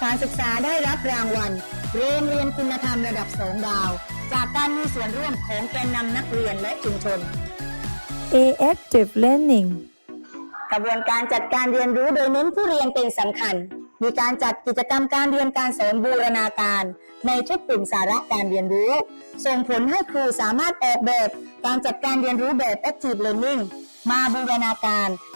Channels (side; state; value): both; inverted; correlation -1.00